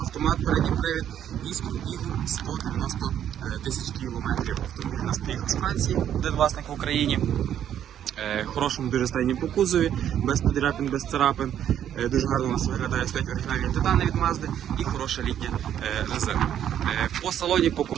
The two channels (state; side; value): quieter; left; 10.2 dB